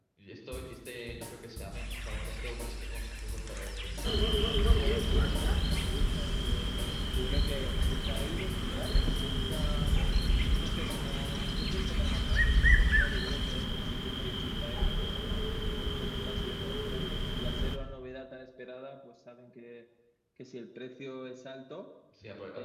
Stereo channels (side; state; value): both; identical; correlation 1.00